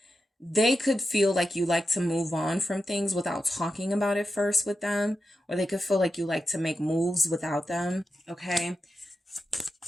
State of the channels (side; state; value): both; normal; correlation 0.89